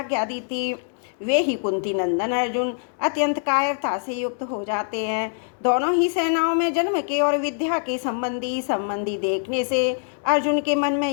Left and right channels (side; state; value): right; silent; digital silence